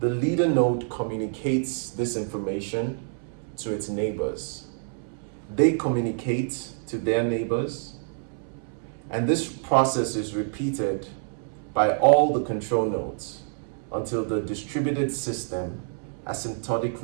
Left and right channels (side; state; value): left; silent; 60 dB below the other